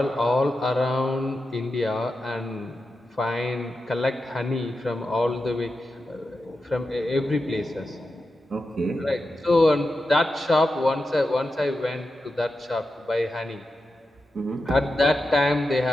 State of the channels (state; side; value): normal; both; correlation 0.90